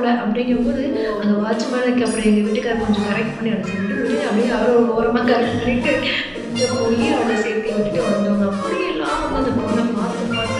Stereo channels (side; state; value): both; identical; correlation 1.00